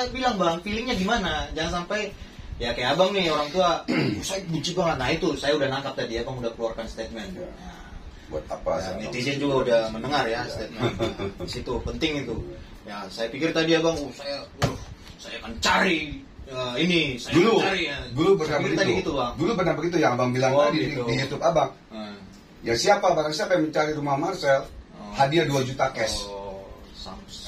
bilang Bang, feelingnya gimana? Jangan sampai ya kayak abang nih orang tua, saya benci banget. Nah itu saya udah nangkap tadi, abang udah keluarkan statement. Buat apa? Netizen juga udah mendengar ya statement. Di situ penting itu. Ya saya pikir tadi abang, saya akan cari ini, saya Dulu, akan cari. dulu pernah Tadi begitu. gitu, Bang. Dulu pernah begitu yang abang bilang Oh, tadi gitu. di YouTube abang. Ya barang siapa yang mencari rumah Marcel, hadiah 2 juta cash. Oh,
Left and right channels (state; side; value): identical; both; correlation 1.00